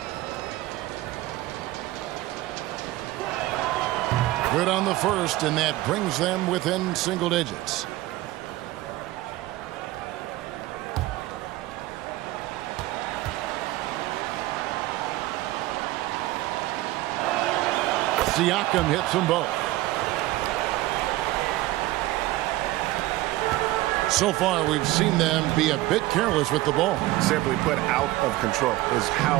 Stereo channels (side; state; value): left; quieter; 17.6 dB